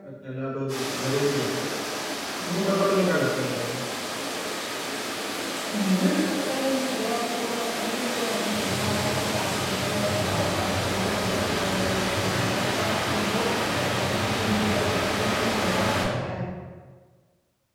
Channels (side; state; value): both; identical; correlation 1.00